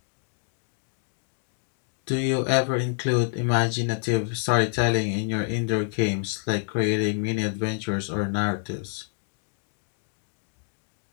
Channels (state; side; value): silent; right; digital silence